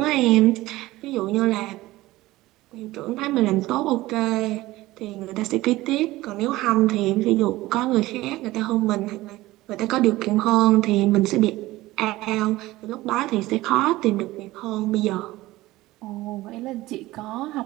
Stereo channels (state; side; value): quieter; left; 18.0 dB